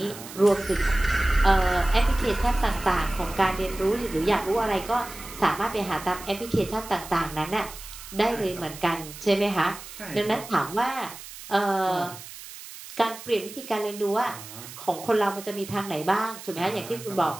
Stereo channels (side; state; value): right; noise; hiss, 14 dB below the sound